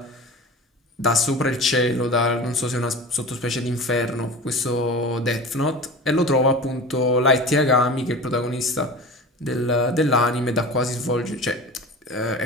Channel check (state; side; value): normal; both; correlation 0.34